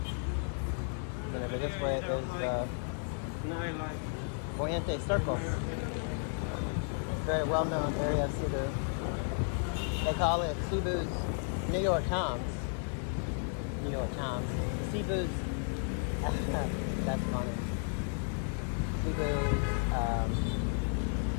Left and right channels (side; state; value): right; silent; 55 dB below the other